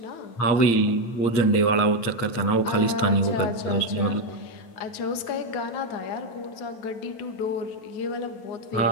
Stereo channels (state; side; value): late; right; 9.0 ms